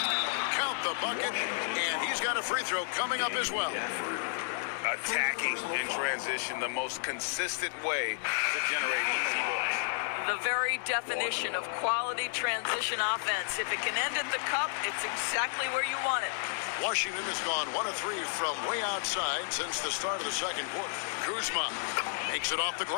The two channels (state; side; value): silent; right; digital silence